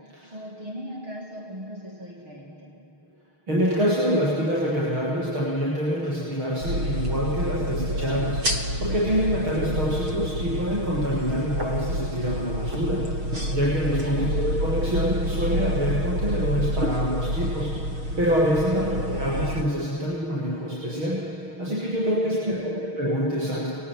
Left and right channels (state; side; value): late; left; 6.4 ms